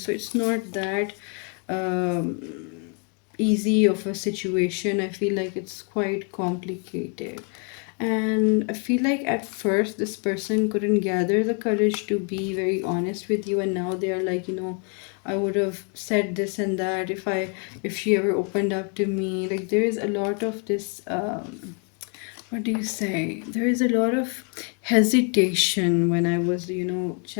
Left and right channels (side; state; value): right; quieter; 39.0 dB